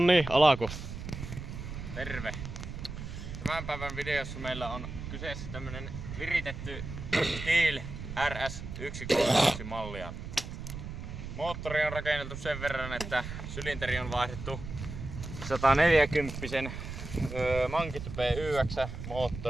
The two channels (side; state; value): right; noise; rumble, 8 dB below the sound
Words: alako. Terve! Tämän päivän videossa meillä on kyseessä tämmönen viritetty Stihl RS 131 mallia. Moottori on rakenneltu sen verran, että sylinteri on vaihdettu 140 Mankit PYX